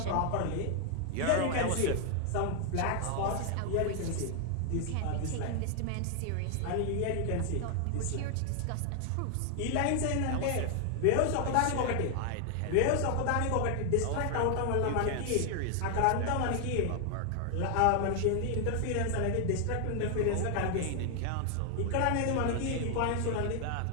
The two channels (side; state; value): both; different; correlation 0.00